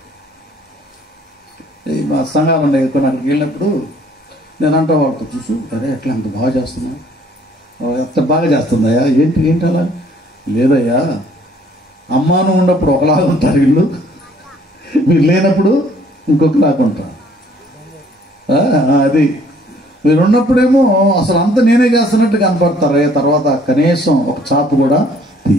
మా సంఘాలు ఉండే అక్కడికి వెళ్ళినప్పుడు నేను అంటా వాళ్ళతో, చూసు అరే ఎట్లా అంత బాగా చేస్తున్నా, ఎంత బాగా చేస్తుందయ్యా, ఏంటి అలా? లేదయ్యా, అమ్మాను ఉన్నప్పుడు ఒకలాగా ఉంటారు వీళ్ళు, మీరు లేనప్పుడు ఇంకొకలాగా ఉంటారు. అది మీరు ఉన్నప్పుడేమో అసలు అంత నేనే చేస్తున్నట్టు కనపడతారు, తర్వాత కనీసం ఒక చాపు కూడా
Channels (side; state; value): both; normal; correlation 0.60